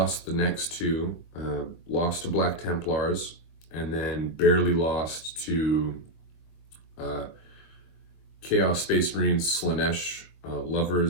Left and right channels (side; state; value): right; late; 23 ms